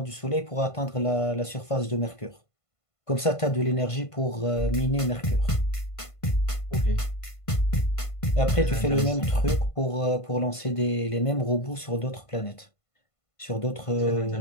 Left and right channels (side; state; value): right; late; 1.5 ms